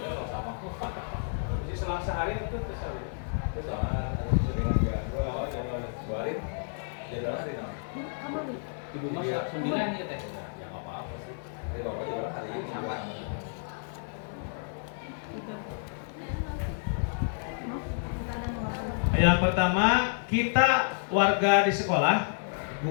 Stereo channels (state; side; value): silent; right; digital silence